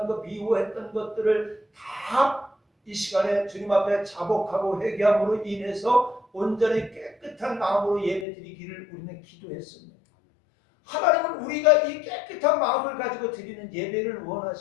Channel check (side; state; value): right; drops out; at 8.2 s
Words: 것, 미워했던 것들을 다 이 시간에 주님 앞에 자복하고 회개함으로 인해서 온전히 깨끗한 마음으로 예배드리기를 우리는 기도했습니다. 하나님은 우리가 이 깨끗한 마음을 가지고 드리는 예배를